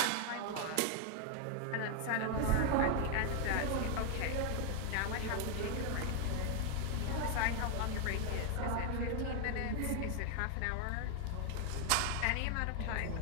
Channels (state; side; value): different; both; correlation 0.00